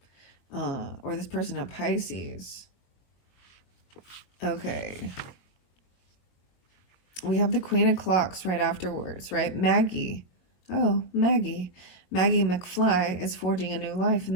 or this person at Pisces. Okay. We have the Queen of Clocks right afterwards, right? Maggie. Oh, Maggie. Maggie McFly is forging a new life in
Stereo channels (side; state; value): right; late; 22 ms